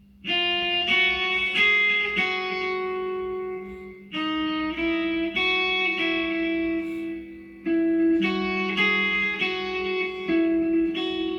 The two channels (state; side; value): identical; both; correlation 1.00